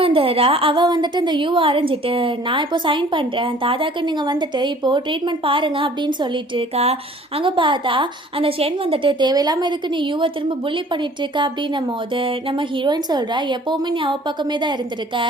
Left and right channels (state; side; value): normal; both; correlation 0.52